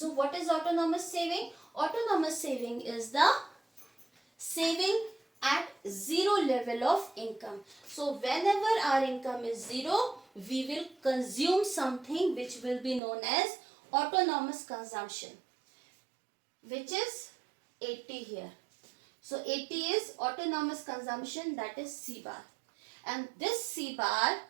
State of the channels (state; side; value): drops out; left; at 13.0 s